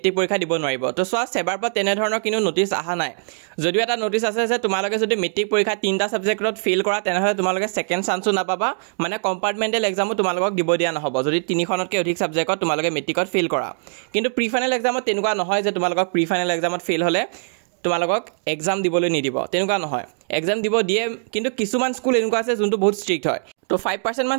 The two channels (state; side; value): silent; left; digital silence